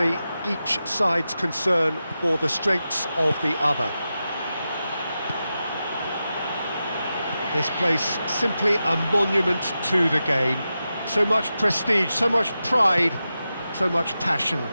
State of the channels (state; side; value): inverted; both; correlation -0.91